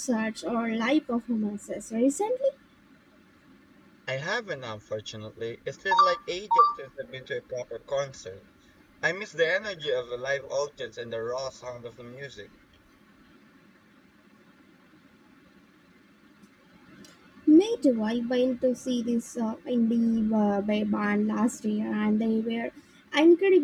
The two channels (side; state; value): both; identical; correlation 1.00